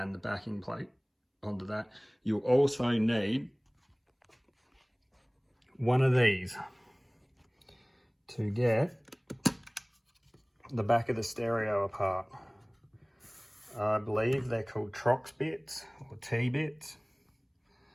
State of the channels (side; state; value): both; identical; correlation 1.00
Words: the backing plate onto that. You'll also need one of these to get the back of the stereo apart. I believe they're called Trox bits or T-bits,